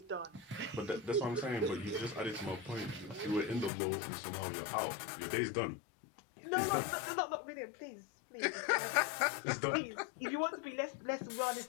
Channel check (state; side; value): drops out; right; at 3.7 s